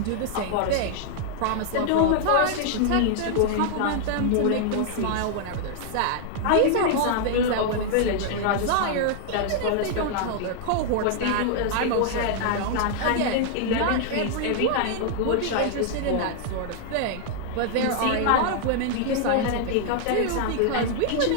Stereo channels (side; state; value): both; different; correlation 0.00